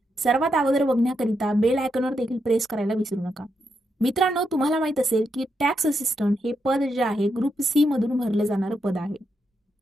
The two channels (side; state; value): both; normal; correlation 0.83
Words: सर्वात अगोदर बघण्याकरिता बेल आयकॉनवर देखील प्रेस करायला विसरू नका. मित्रांनो, तुम्हाला माहित असेल की टॅक्स असिस्टंट हे पद जे आहे ग्रुप सी मधून भरलं जाणारं पद आहे.